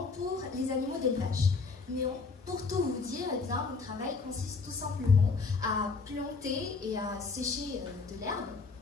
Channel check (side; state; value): right; quieter; 4.4 dB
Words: pour les animaux d'élevage. Mais pour tout vous dire, eh bien, mon travail consiste tout simplement à planter et à sécher de l'herbe,